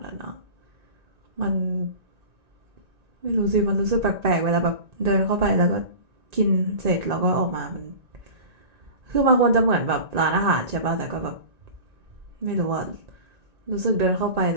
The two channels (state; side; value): late; left; 1.9 ms